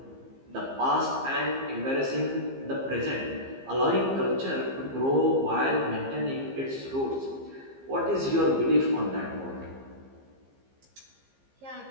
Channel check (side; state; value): left; late; 15 ms